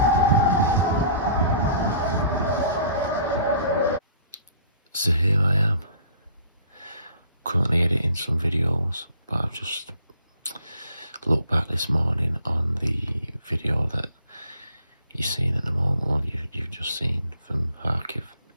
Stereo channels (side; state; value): both; inverted; correlation -0.54